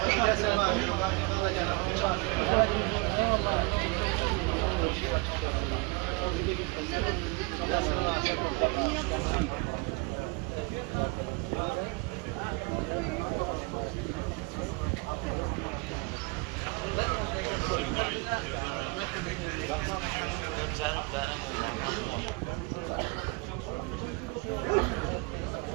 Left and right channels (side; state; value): left; quieter; 27.6 dB